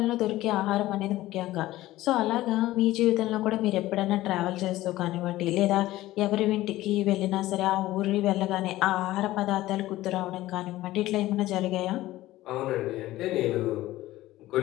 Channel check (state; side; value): quieter; right; 16.3 dB